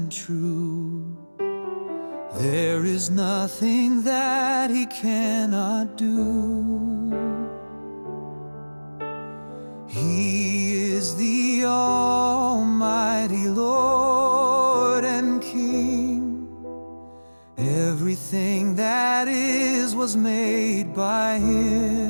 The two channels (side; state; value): both; inverted; correlation -1.00